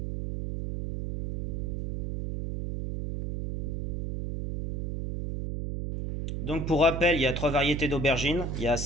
Donc pour rappel, il y a trois variétés d'aubergines, il y a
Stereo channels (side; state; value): right; noise; hum, 2 dB below the sound